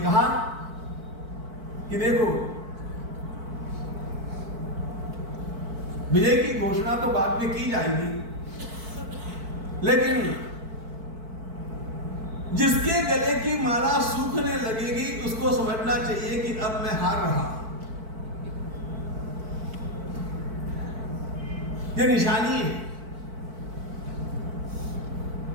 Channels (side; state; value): left; late; 4.5 ms